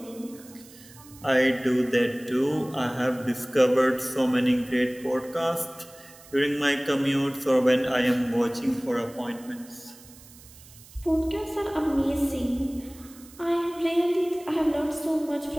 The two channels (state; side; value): noise; right; hiss, 22 dB below the sound